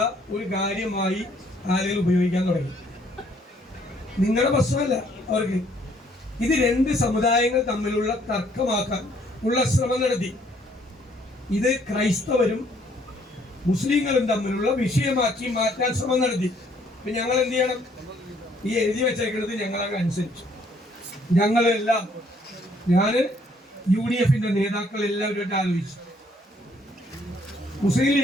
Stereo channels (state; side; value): normal; both; correlation 0.65